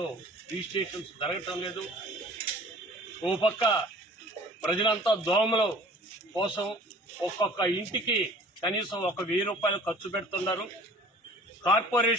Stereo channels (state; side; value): normal; both; correlation 0.48